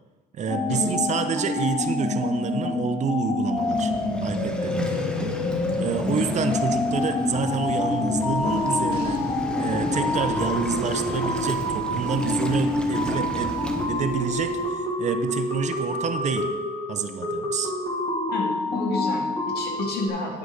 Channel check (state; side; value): normal; both; correlation 0.52